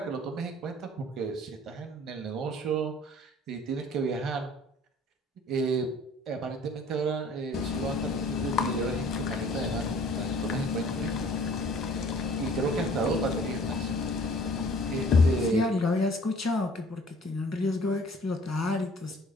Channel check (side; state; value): both; normal; correlation 0.52